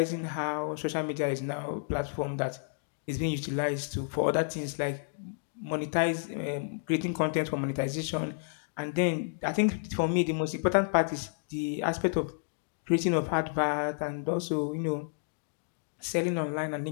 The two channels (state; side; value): silent; right; digital silence